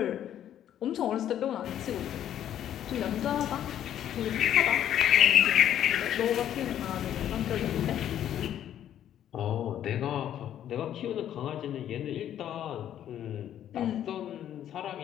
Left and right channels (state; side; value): quieter; right; 10.8 dB